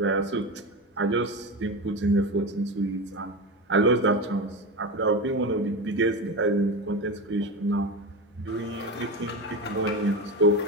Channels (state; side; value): normal; both; correlation 0.21